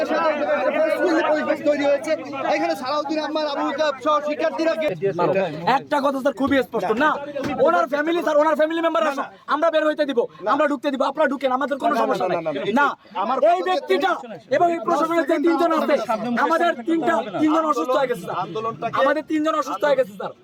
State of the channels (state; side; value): identical; both; correlation 1.00